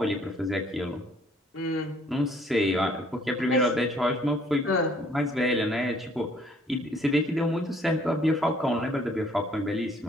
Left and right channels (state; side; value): normal; both; correlation 0.61